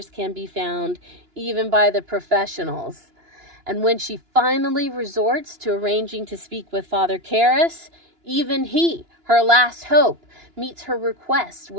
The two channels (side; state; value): left; late; 2.9 ms